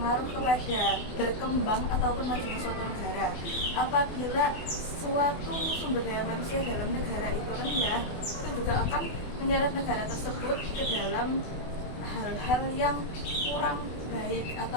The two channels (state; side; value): late; right; 24 ms